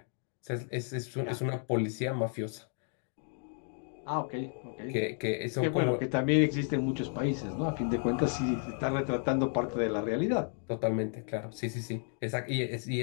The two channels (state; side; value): silent; right; 56 dB below the other